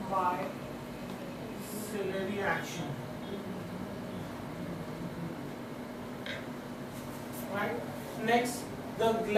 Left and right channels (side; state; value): both; identical; correlation 1.00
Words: by ciliary action. Right? Next, the